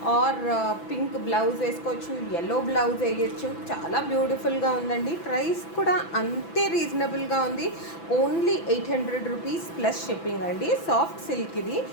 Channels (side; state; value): right; late; 6.0 ms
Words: ఆర్ పింక్ బ్లౌజ్ వేసుకోవచ్చు, ఎల్లో బ్లౌజ్ వేయచ్చు. చాలా బ్యూటిఫుల్గా ఉందండి. ప్రైస్ కూడా అంతే రీజనబుల్గా ఉంది. ఓన్లీ 800 రూపీస్ ప్లస్ షిప్పింగ్ అండి. సాఫ్ట్ సిల్క్ ఇది.